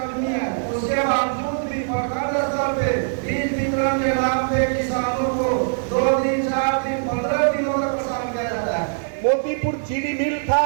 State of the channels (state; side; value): silent; left; digital silence